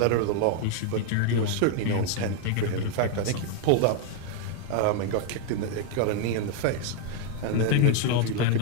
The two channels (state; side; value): different; both; correlation 0.00